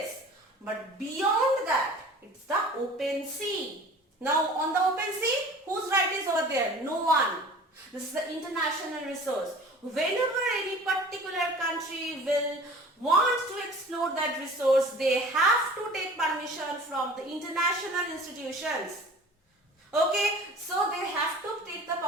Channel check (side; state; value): both; normal; correlation 0.44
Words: But beyond that, it's the open sea. Now on the open sea, whose right is over there? No one. This is the international resource. Whenever any particular country will want to explore that resource, they have to take permission from the international institutions. Okay, so they have to take the